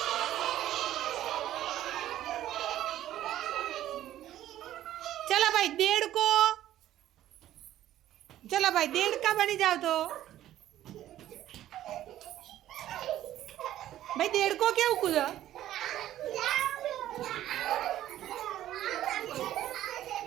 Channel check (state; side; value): quieter; left; 12.9 dB